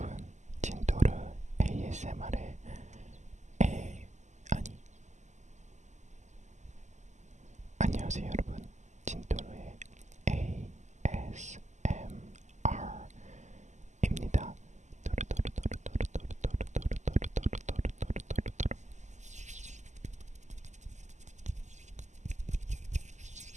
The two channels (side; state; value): left; late; 0.34 ms